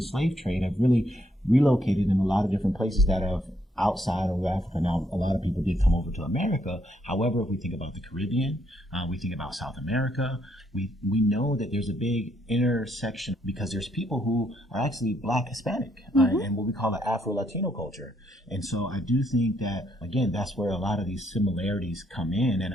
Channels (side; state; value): both; normal; correlation 0.73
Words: slave trade have really relocated in a lot of different places that have outside of Africa. Now, a lot of people did come over to America. However, if we think about the Caribbean, we think about South America, we know that there's a big intersection because there's people who are actually Black Hispanic and what we call the Afro-Latino culture. And so I do think that, again, that's where a lot of these similarities come in.